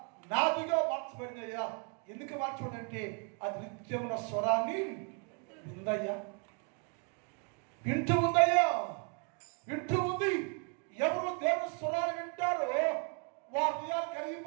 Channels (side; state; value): left; quieter; 36.5 dB